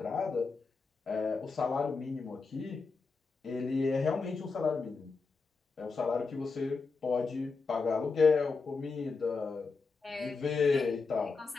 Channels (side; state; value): right; quieter; 4.5 dB